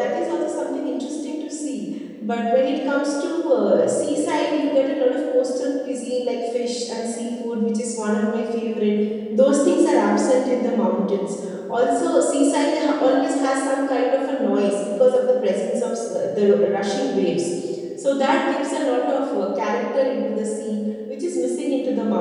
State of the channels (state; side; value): identical; both; correlation 1.00